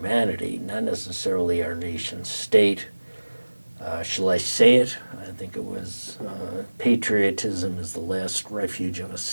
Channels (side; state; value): both; inverted; correlation -1.00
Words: not necessarily our nation state. Shall I say it? I think it was, patriotism is the last refuge of a